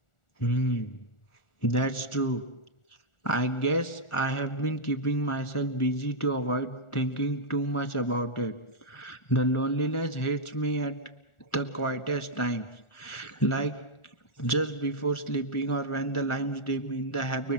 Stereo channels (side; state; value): right; late; 1.4 ms